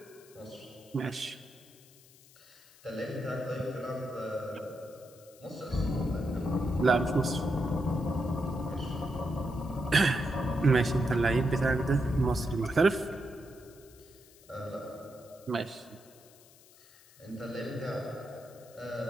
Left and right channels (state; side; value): noise; left; hiss, 25 dB below the sound